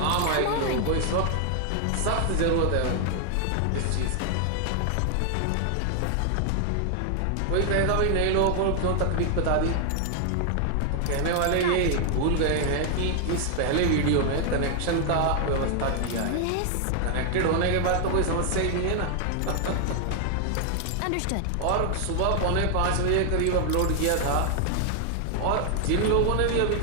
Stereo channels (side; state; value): both; different; correlation 0.00